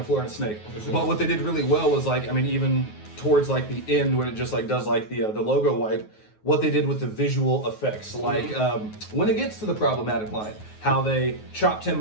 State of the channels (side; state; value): right; late; 9.4 ms